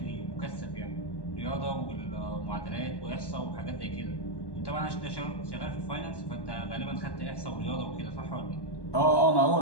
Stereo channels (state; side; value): late; right; 1.1 ms